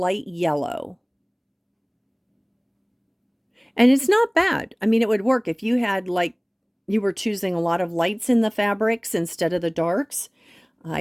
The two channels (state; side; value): identical; both; correlation 1.00